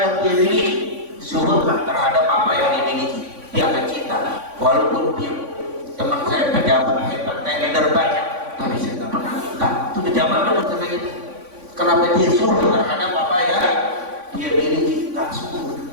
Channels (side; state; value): left; late; 3.5 ms